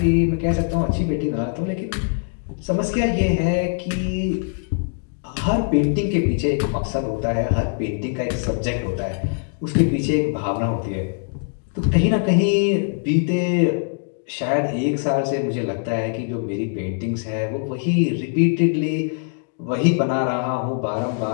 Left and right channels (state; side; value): silent; right; 64 dB below the other